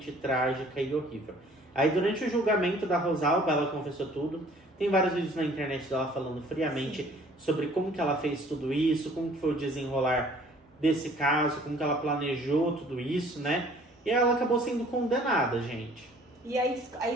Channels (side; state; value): both; normal; correlation 0.54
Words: trágica e horrível. Aí durante o julgamento da Rosalba, ela confessou tudo. Tem vários vídeos na internet dela falando friamente Sim. sobre como que ela fez tudo isso, como que foi o desenrolar desse caso, como que ela planejou tudo isso, né? E ela acabou sendo condenada, gente. E aí